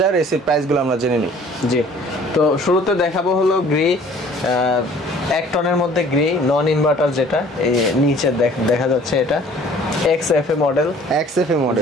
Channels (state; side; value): normal; both; correlation 0.52